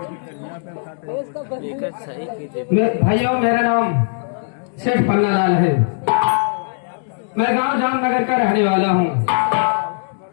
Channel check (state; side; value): silent; right; digital silence